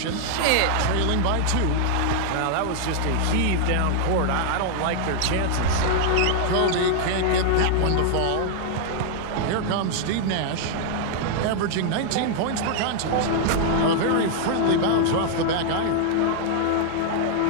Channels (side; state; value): both; different; correlation 0.00